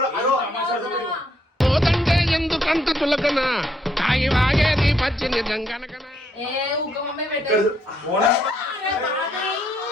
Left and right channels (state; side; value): normal; both; correlation 0.72